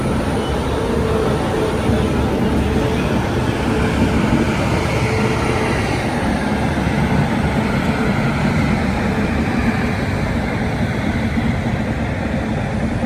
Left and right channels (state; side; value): identical; both; correlation 1.00